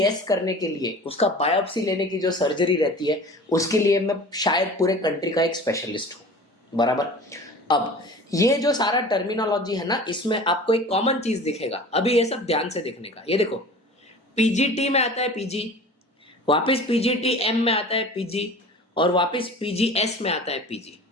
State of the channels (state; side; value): normal; both; correlation 0.40